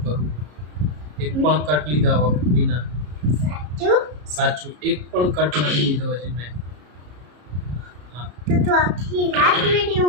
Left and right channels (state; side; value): late; left; 33 ms